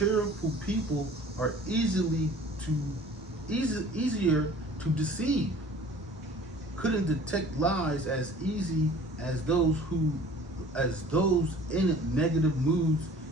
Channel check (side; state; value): both; normal; correlation 0.48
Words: people are easier to deceive. Couldn't detect lies as easy as those in negative moods,